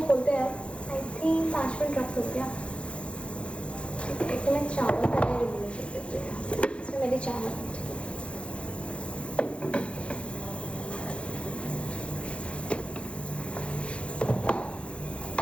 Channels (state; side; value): late; right; 0.059 ms